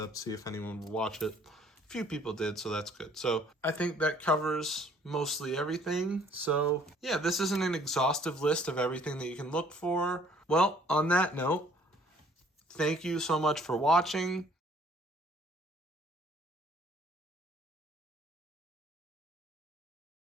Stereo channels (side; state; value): both; normal; correlation 0.59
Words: see if anyone would watch it. Few people did, so that's good. So I think that covers mostly everything. So yeah, this isn't an exhaustive list of everything that you can look for. Well, on that note, thank you so much for watching.